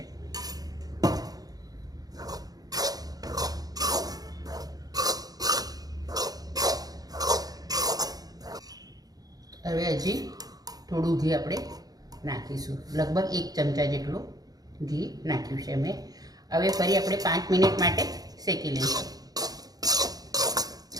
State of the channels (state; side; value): late; left; 0.18 ms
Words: હવે હજી થોડું ઘી આપણે નાખીશું, લગભગ 1 ચમચા જેટલું ઘી નાખ્યું છે મેં। હવે ફરી આપણે 5 મિનિટ માટે શેકી લઈશું।